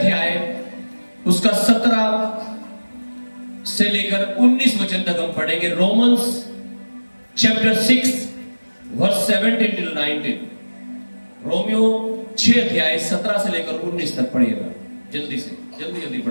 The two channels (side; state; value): both; inverted; correlation -1.00